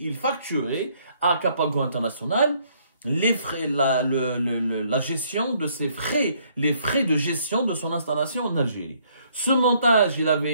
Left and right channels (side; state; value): both; inverted; correlation -0.67